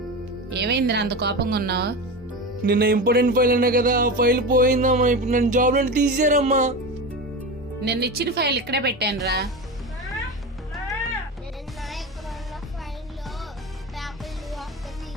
ఏమైందిరా అంత కోపంగా ఉన్నావు? నిన్న ఇంపార్టెంట్ ఫైల్ అన్నా కదా, ఆ ఫైల్ పోయిందమ్మా. ఇప్పుడు నన్ను జాబ్ నుండి తీసేరమ్మా. నిన్న ఇచ్చిన ఫైల్ ఇక్కడే పెట్టాను రా.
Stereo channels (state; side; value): normal; both; correlation 0.24